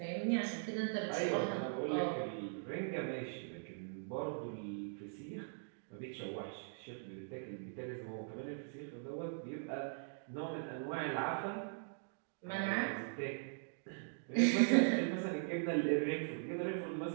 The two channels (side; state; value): left; silent; digital silence